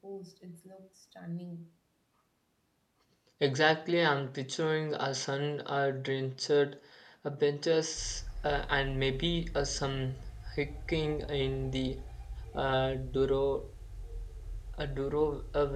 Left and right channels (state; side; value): identical; both; correlation 1.00